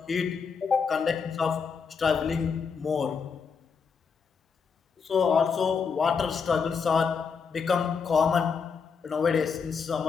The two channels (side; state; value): right; quieter; 5.9 dB